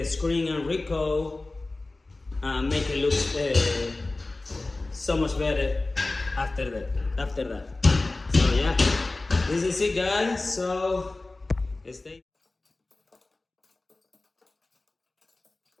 screen and recoat and make it look so much better after that. So yeah, this is it, guys. So stay.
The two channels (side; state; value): right; quieter; 3.1 dB